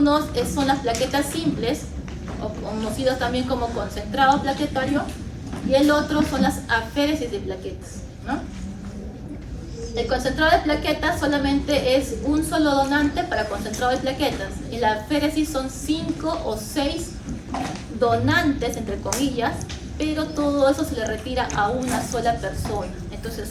son las plaquetas simples, o conocidos también como concentrado plaquetario, y el otro son las aféresis de plaquetas, ¿no? El concentrado de plaquetas solamente es un solo donante para concentrado de plaquetas. En la aféresis son 5 o 6 donantes, entre comillas, pero todo eso se le retira a una sola persona. Entonces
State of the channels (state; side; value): identical; both; correlation 1.00